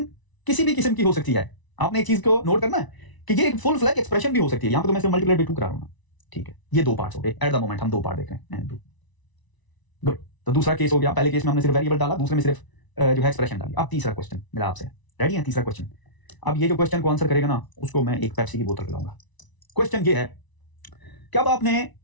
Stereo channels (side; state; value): right; late; 1.0 ms